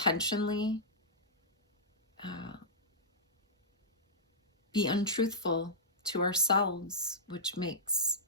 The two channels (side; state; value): both; normal; correlation -0.14